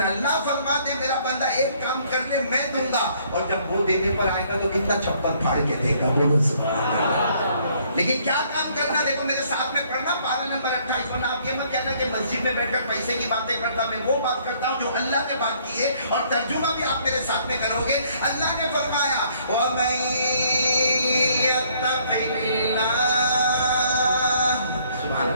اللہ فرماتے میرا بندہ ایک کام کر لے میں دوں گا, اور جب وہ دینے پر آئے گا تو کتنا چپل پھاڑ کے دے گا. بولو سبحان اللہ. لیکن کیا کام کرنا, دیکھو میرے ساتھ میں پڑھنا پارہ نمبر 28. ورنہ آپ یہ مت کہنا کہ مسجد میں بیٹھ کر پیسے کی باتیں کرتا, میں وہ بات کرتا ہوں جو اللہ نے بات کی ہے, اور ترجمہ بھی آپ میرے ساتھ میں کرو گے. اللہ نے فرمایا وَمَن يَتَّقِ اللَّهَ, سبحان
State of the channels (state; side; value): inverted; both; correlation -0.64